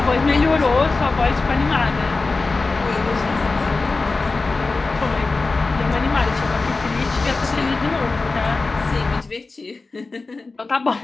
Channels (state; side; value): quieter; right; 3.7 dB